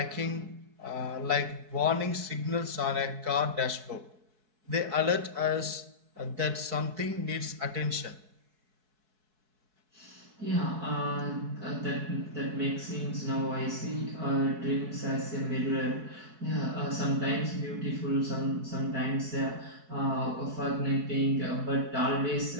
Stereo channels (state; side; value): late; left; 4.6 ms